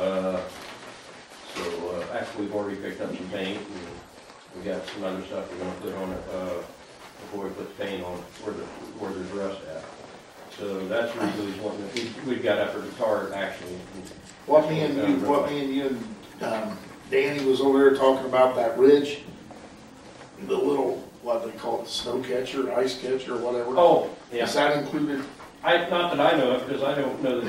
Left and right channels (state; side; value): identical; both; correlation 1.00